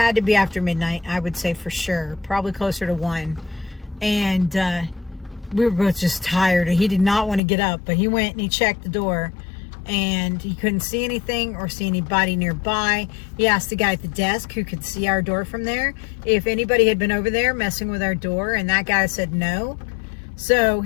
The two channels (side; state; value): right; drops out; at 7.4 s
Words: to be after midnight, I would say for sure. Probably closer to 1. And we were both just tired. He did not want to get up, but he went and he checked the door and he couldn't see anything or see anybody nearby. He asked the guy at the desk who could see our door from there if anybody had been over there messing with our door, and that guy said no. So